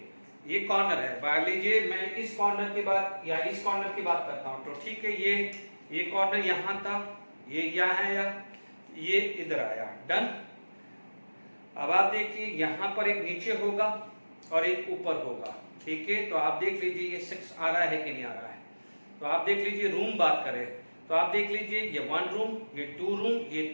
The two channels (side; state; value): both; inverted; correlation -1.00